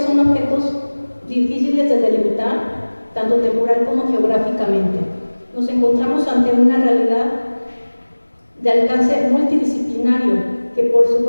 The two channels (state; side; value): inverted; both; correlation -1.00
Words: son objetos difíciles de delimitar, tanto temporal como geográficamente. Nos encontramos ante una realidad de alcance multidisciplinario que por su